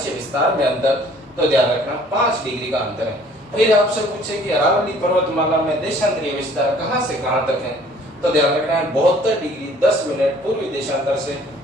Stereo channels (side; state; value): both; normal; correlation 0.55